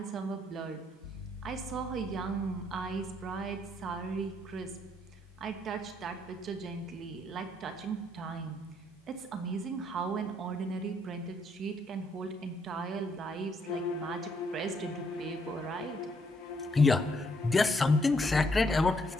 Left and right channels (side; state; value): both; normal; correlation 0.72